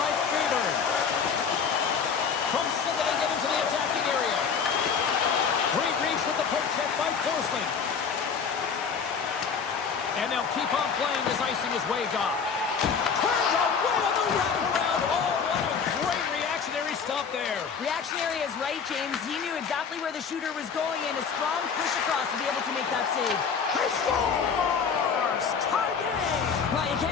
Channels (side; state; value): right; quieter; 6.2 dB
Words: Freeberg. From center they get into the attacking area. Great reach with the poke check by Forsling. And they'll keep on playing as icing is waved off. Turned away on the wraparound. Oh, what a great reactionary stop there. Reactionary is right, James. He knew exactly where the shooter was going, and a strong push across to be able to make that save. He scores! Tie game! Well, you